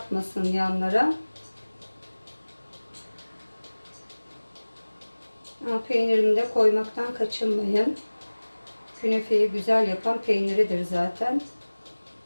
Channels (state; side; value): inverted; both; correlation -1.00